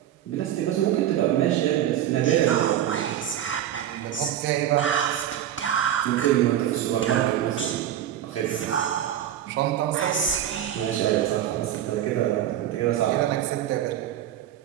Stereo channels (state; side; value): quieter; left; 11.1 dB